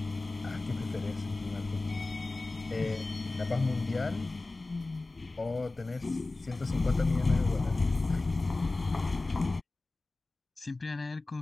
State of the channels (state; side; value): quieter; right; 3.2 dB